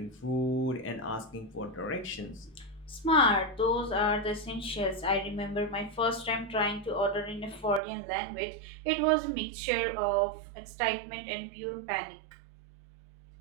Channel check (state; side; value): drops out; left; at 7.8 s